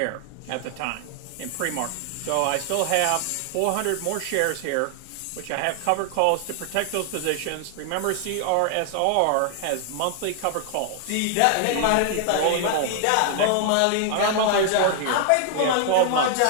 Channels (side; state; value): both; different; correlation 0.00